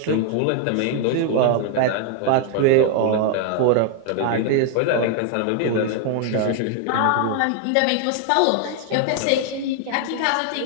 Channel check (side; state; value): both; different; correlation 0.00